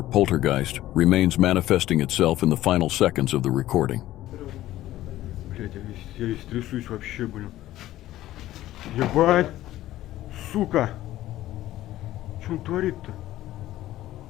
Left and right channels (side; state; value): right; quieter; 14.7 dB